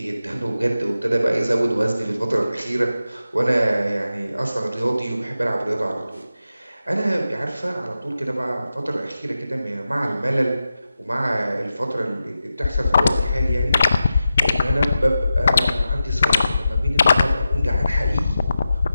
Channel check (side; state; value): both; inverted; correlation -0.91